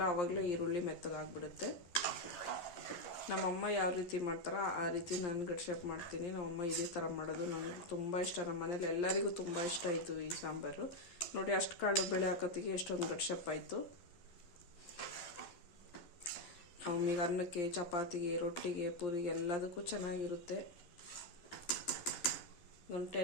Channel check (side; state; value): right; late; 11 ms